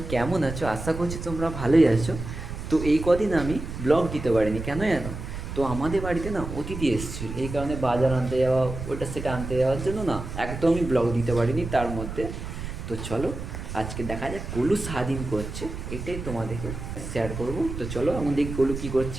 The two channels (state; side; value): noise; right; rumble, 8 dB below the sound